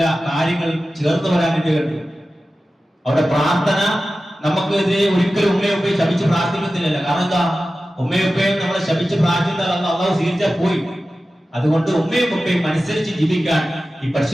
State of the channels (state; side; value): normal; both; correlation 0.95